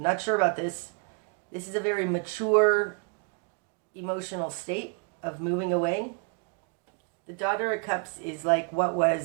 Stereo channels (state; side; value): quieter; left; 36.7 dB